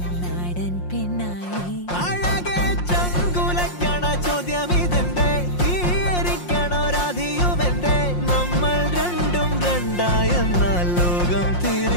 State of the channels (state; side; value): late; right; 5.6 ms